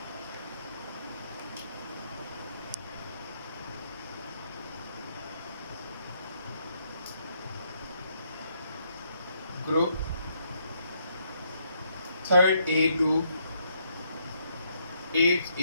group 3rd A to 8th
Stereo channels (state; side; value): inverted; both; correlation -0.73